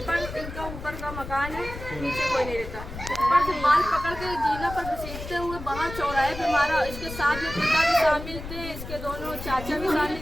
ऊपर का मकान है, नीचे कोई नहीं रहता। ऊपर से बाल पकड़ के जीना पर घसीटते हुए बाहर चौराहे पे मारा। इसके साथ में पिता भी शामिल थे, इसके दोनों चाचा भी शामिल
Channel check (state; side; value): noise; left; rumble, 10 dB below the sound